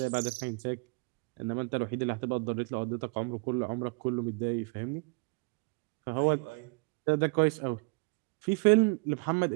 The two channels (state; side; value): quieter; left; 33.3 dB